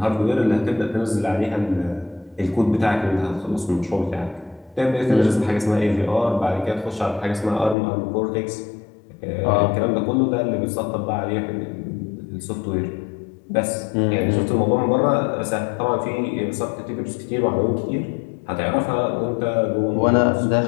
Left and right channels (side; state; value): right; drops out; at 7.8 s